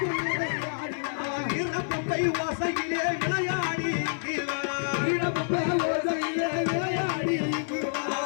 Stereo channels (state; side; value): silent; right; digital silence